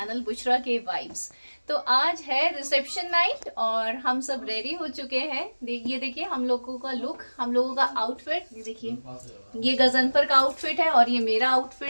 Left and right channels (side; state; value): both; inverted; correlation -1.00